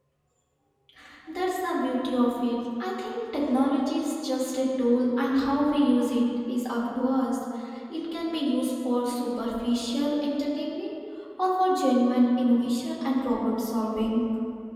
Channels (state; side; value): identical; both; correlation 1.00